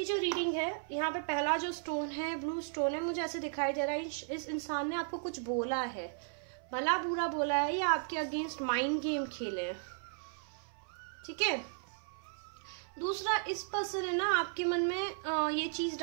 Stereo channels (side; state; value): left; silent; 54 dB below the other